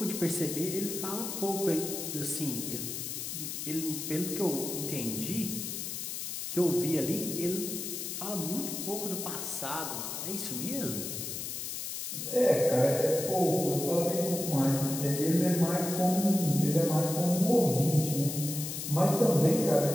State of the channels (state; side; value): noise; left; hiss, 5 dB below the sound